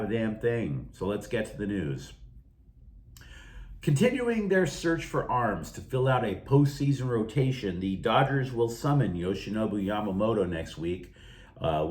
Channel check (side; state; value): both; identical; correlation 1.00